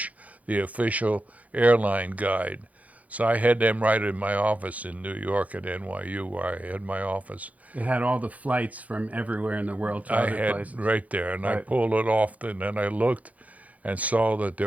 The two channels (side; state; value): left; late; 0.071 ms